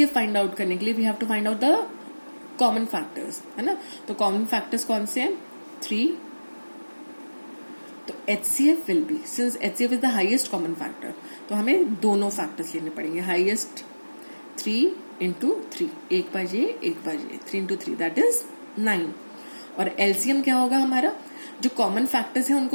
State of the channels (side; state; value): both; inverted; correlation -1.00